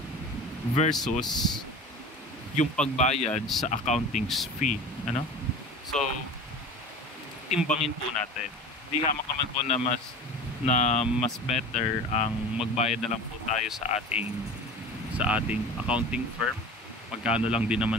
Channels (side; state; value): both; normal; correlation 0.36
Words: versus yung pagbayad sa accounting fee, ano? So timbangin po natin. Di hamak naman po na mas better ang magbayad na lang po tayo sa ating accounting firm. Magkano lang din